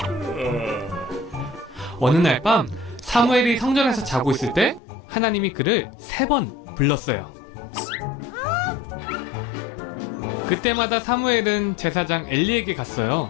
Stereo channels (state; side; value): drops out; right; at 4.8 s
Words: 어느 날 밤 사무엘이 성전에서 자고 있을 때 하나님이 그를 3번 불렀어요. 그때마다 사무엘은 제사장 엘리에게 갔어요.